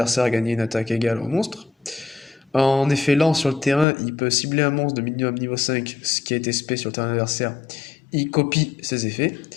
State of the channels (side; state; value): right; drops out; at 3.9 s